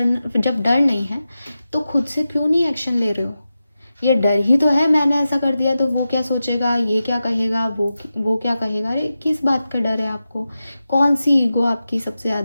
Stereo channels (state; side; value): inverted; both; correlation -0.92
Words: जब डर नहीं है तो खुद से क्यों नहीं एक्शन ले रहे हो? ये डर ही तो है, मैंने ऐसा कर दिया तो वो क्या सोचेगा, ये क्या कहेगा, वो क्या कहेगा। अरे किस बात का डर है आपको? कौन सी ईगो आपकी सबसे